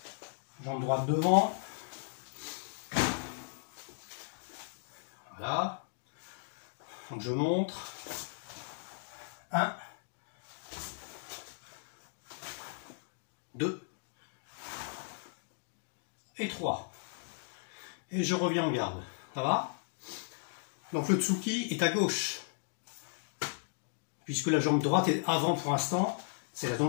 Jambe droite devant. Voilà. Donc je montre. 1, 2 et 3. Et je reviens en garde. Ça va? Donc le Tsuki est à gauche. Puisque la jambe droite est avant pour l'instant, c'est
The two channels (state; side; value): silent; right; digital silence